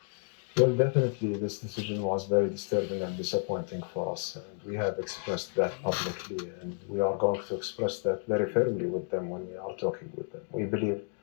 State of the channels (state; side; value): silent; right; 57 dB below the other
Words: Well, definitely this decision was very disturbing and disappointing for us, and we have expressed that publicly, and we are going to express that very firmly with them when we are talking with them. We believe